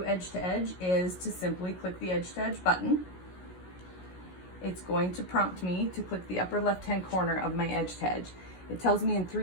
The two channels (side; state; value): right; late; 16 ms